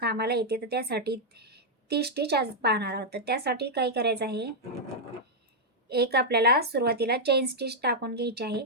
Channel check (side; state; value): both; normal; correlation -0.04